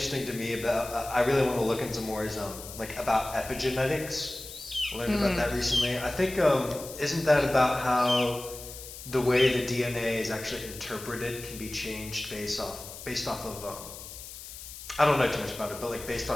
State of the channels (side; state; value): left; noise; hiss, 13 dB below the sound